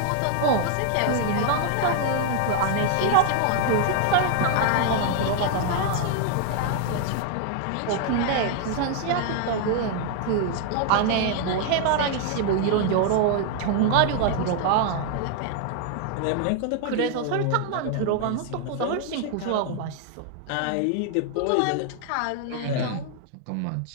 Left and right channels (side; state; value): both; different; correlation 0.00